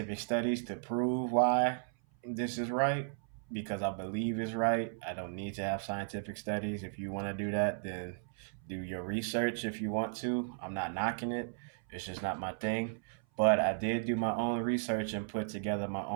studies to prove why this is right because I believe it's right. I don't need to have scientific studies. If you want to do that, then do your research if you want to. I'm not knocking it, it's just not my thing. But I did do my own research and put together my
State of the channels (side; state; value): left; silent; 54 dB below the other